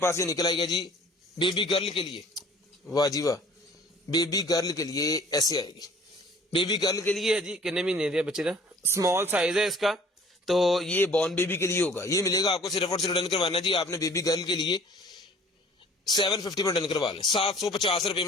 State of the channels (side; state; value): both; normal; correlation 0.51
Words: ये निकल आएगा जी, बेबी गर्ल के लिए, वाह जी वाह, बेबी गर्ल के लिए ऐसे आएगी, बेबी गर्ल के लिए है जी। कितने महीने दिया बच्चे का, स्मॉल साइज है इसका, तो ये बॉर्न बेबी के लिए होगा। ये मिलेगा आपको सिर्फ और सिर्फ डन करवाना जी आपने बेबी गर्ल के लिए 750 में डन करवा लें, 750 रुपए